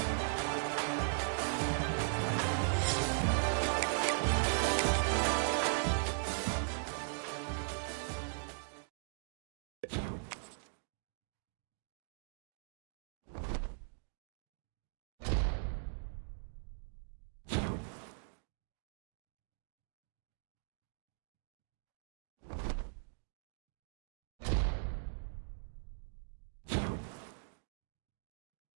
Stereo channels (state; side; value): silent; left; digital silence